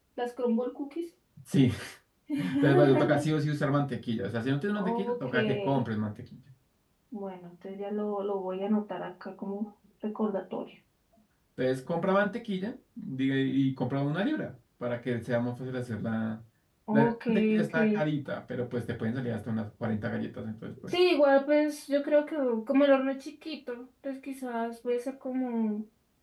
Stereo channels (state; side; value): identical; both; correlation 1.00